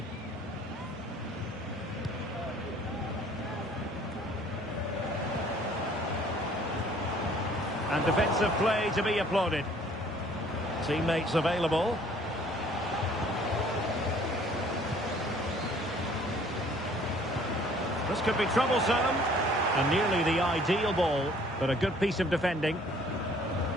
And defensive play to be applauded. Teammates available. This could be troublesome, and nearly the ideal ball, but a good piece of defending.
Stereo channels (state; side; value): normal; both; correlation 0.56